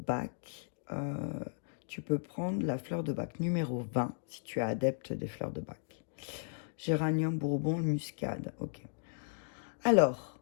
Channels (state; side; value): silent; right; digital silence